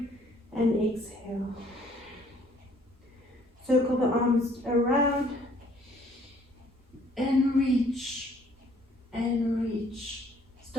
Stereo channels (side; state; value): both; normal; correlation 0.60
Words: and exhale. Circle the arms around and reach and reach.